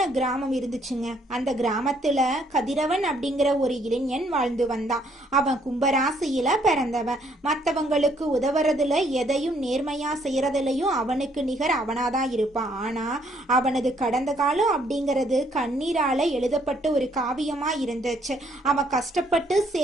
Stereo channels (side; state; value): both; normal; correlation 0.67